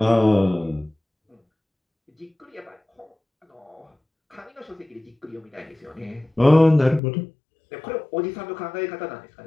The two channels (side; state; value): right; drops out; at 7.0 s